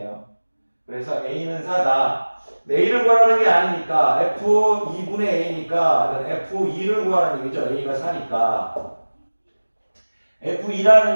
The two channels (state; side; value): inverted; both; correlation -1.00